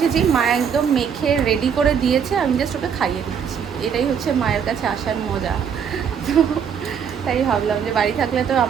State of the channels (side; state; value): left; quieter; 7.4 dB